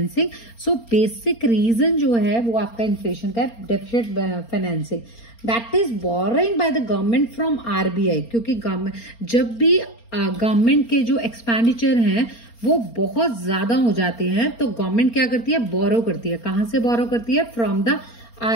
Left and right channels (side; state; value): right; late; 4.3 ms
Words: So basic reason जो है वो आपका इन्फ्लेशन का है deficit financing. That is borrowing by the government from RBI. क्योंकि गवर्नमेंट जब भी गवर्नमेंट के जो एक्सपेंडिचर हैं वो बहुत ज्यादा हो जाते हैं तो गवर्नमेंट क्या करती है, बोरो करती है. कहां से बोरो करती है, फ्रॉम द